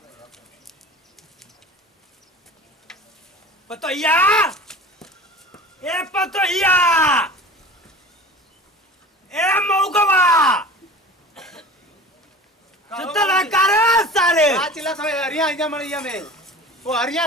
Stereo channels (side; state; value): both; normal; correlation 0.38